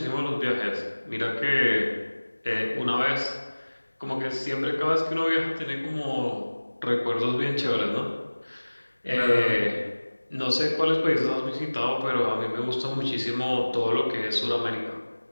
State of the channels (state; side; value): inverted; both; correlation -1.00